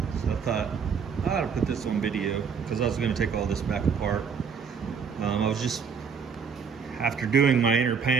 So I thought I ought to put this on video because I was going to take all this back apart. I was just, after doing my inner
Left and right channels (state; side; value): quieter; left; 6.3 dB